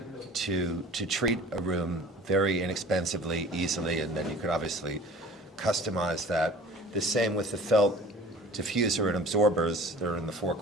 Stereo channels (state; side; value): normal; both; correlation 0.44